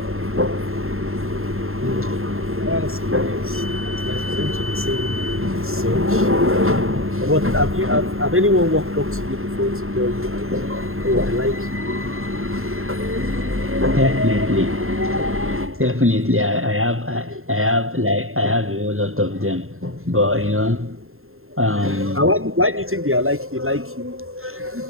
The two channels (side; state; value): left; late; 0.61 ms